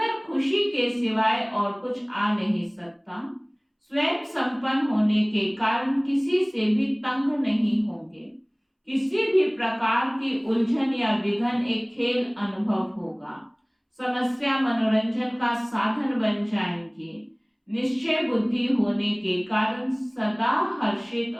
खुशी के सिवाय और कुछ आ नहीं सकता। स्वयं संपन्न होने के कारण किसी से भी तंग नहीं होंगे। किसी भी प्रकार की उलझन या विघन एक खेल अनुभव होगा। समस्या मनोरंजन का साधन बन जाएंगे। निश्चय बुद्धि होने के कारण सदा हर्षित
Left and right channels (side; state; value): both; identical; correlation 1.00